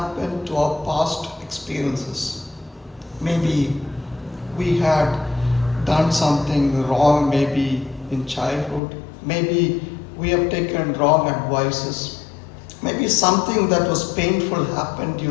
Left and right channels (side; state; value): right; drops out; at 8.8 s